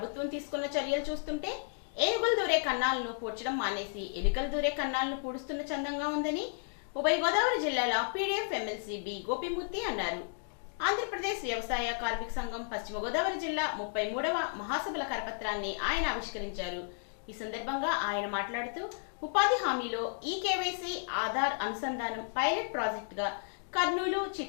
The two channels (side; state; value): right; silent; digital silence